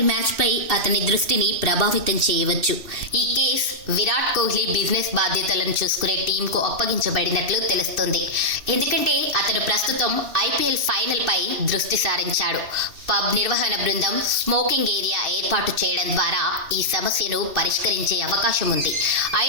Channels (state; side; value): late; left; 2.6 ms